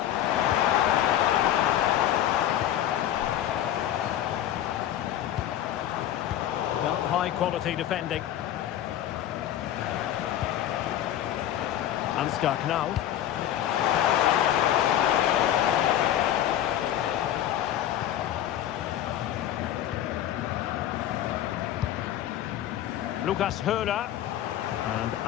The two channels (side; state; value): right; quieter; 11.7 dB